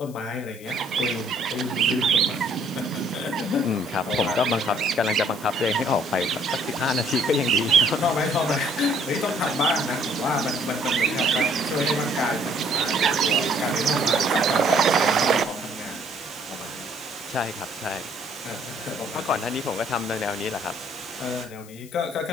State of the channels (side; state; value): left; noise; hiss, 21 dB below the sound